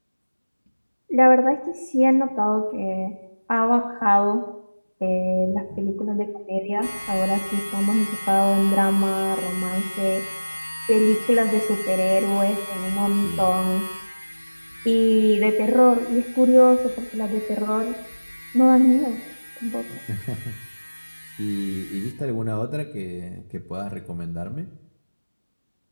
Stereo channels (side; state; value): both; inverted; correlation -1.00